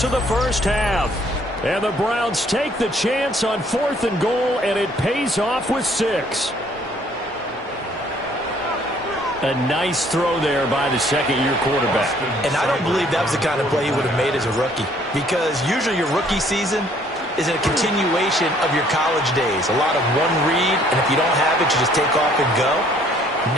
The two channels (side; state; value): both; normal; correlation 0.61